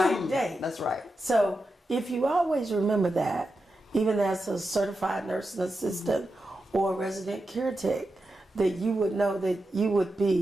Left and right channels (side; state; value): both; normal; correlation 0.89